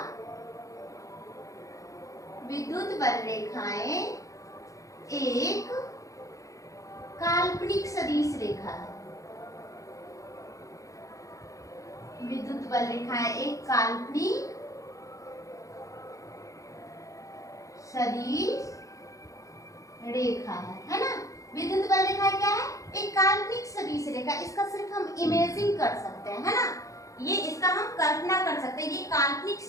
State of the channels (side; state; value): right; late; 0.16 ms